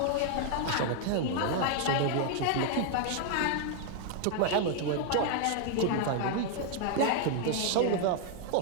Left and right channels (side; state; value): both; different; correlation 0.00